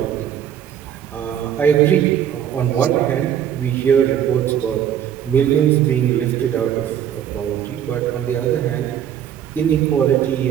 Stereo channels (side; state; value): left; quieter; 9.8 dB